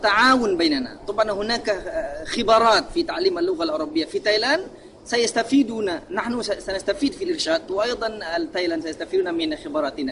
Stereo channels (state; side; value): identical; both; correlation 1.00